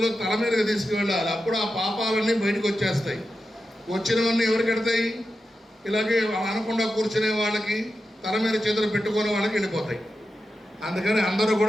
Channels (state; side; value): normal; both; correlation 0.90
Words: తల మీదకి తీసుకువెళ్ళాలి. అప్పుడు ఆ పాపాలన్నీ బయటకు వచ్చేస్తాయి. వచ్చినవన్నీ ఎవరికి ఎడతాయి? ఇలాగే అనకుండా కూర్చునే వాళ్ళకి, తల మీద చేతులు పెట్టుకునే వాళ్ళకి వెళ్ళిపోతాయి. అందుకని అందరూ